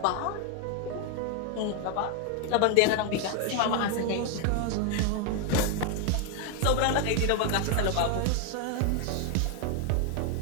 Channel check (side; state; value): both; different; correlation 0.01